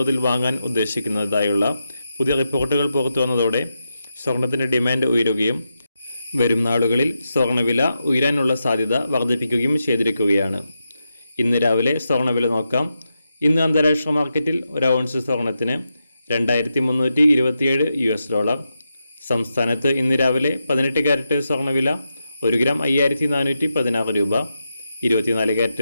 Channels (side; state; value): both; inverted; correlation -0.87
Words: വാങ്ങാൻ ഉദ്ദേശിക്കുന്നതായുള്ള പുതിയ റിപ്പോർട്ടുകൾ പുറത്തു വന്നതോടെ സ്വർണത്തിൻ്റെ ഡിമാൻഡ് ഉയരുകയും വരും നാളുകളിൽ സ്വർണ്ണവില ഉയരാനുള്ള സാധ്യത വർദ്ധിപ്പിക്കുകയും ചെയ്തിരിക്കുകയാണ്. ഇന്ന് രാവിലെ സ്വർണ്ണവില നോക്കാം. ഇന്ന് അന്താരാഷ്ട്ര മാർക്കറ്റിൽ ഒരു ഔൺസ് സ്വർണത്തിന് $2,327. സംസ്ഥാനത്ത് ഇന്ന് രാവിലെ 18 കാരറ്റ് സ്വർണ്ണവില 1 ഗ്രാം 5,416 രൂപ. 24